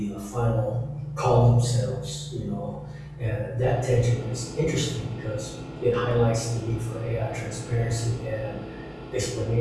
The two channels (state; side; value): identical; both; correlation 1.00